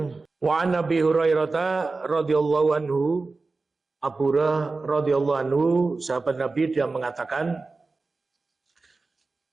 wa Nabi Hurairah radhiyallahu anhu, Abu Hurairah radhiyallahu anhu, sahabat Nabi, dia mengatakan,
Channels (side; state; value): left; quieter; 3.7 dB